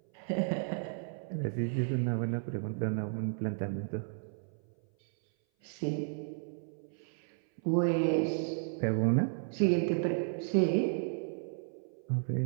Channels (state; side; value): silent; left; 55 dB below the other